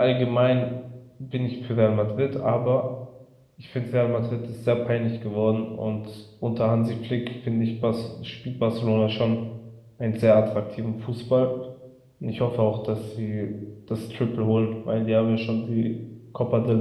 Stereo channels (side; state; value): both; identical; correlation 1.00